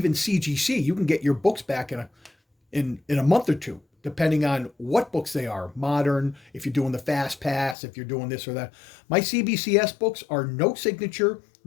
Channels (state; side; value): drops out; right; at 7.8 s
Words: CGC, you can get your books back in a month or two, depending on what books they are. Modern, if you're doing the fast pass, if you're doing this or that. My CBCS books are no signature,